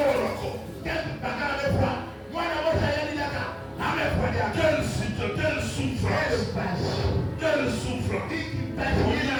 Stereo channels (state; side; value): identical; both; correlation 1.00